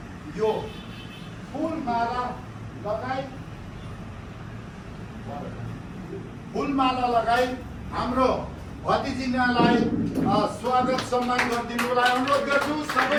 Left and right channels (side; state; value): both; identical; correlation 1.00